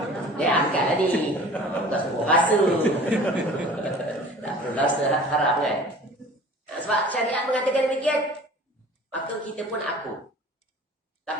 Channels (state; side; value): normal; both; correlation 0.44